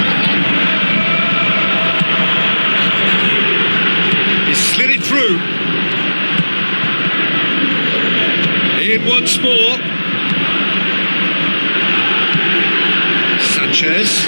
He slid it through. In once more. Sanchez.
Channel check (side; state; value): both; inverted; correlation -1.00